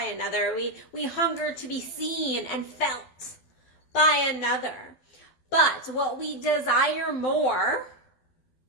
We hunger to be seen and felt by another. But what we desire more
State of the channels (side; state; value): right; late; 12 ms